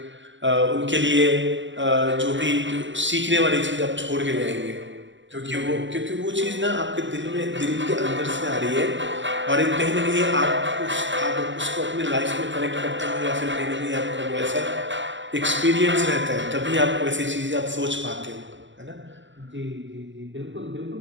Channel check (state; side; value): late; left; 0.54 ms